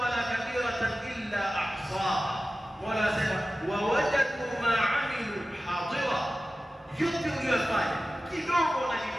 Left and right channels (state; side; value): normal; both; correlation 0.95